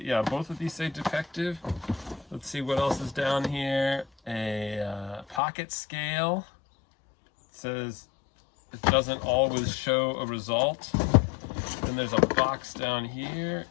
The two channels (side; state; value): right; drops out; at 5.4 s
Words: both of these say defective. Let's see what else is down here. A pocket scale. It says it doesn't always show a result. Then there's a box down here.